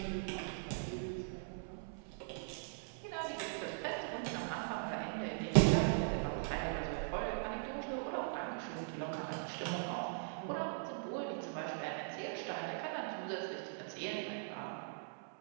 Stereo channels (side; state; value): left; silent; 51 dB below the other